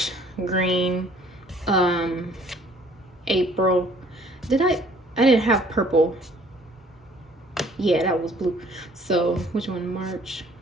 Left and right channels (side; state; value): both; normal; correlation 0.57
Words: green. April. I didn't have purple. Yeah, that was blue. So which one? March.